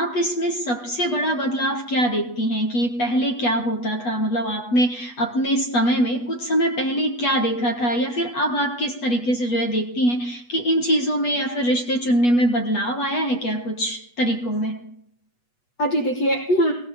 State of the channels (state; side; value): late; right; 8.2 ms